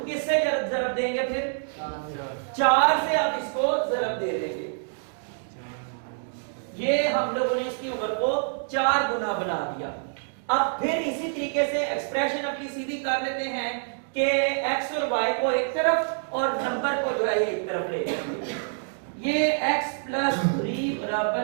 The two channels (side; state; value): left; silent; digital silence